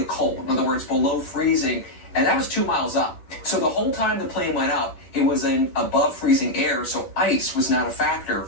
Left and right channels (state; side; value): late; right; 11 ms